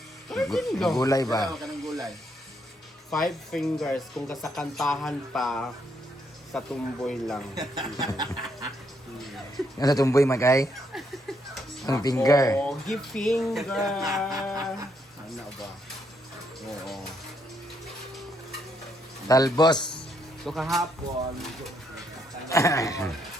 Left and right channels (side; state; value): both; normal; correlation 0.75